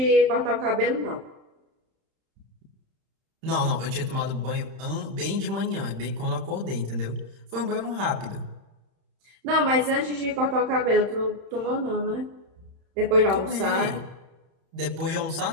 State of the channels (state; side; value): late; left; 31 ms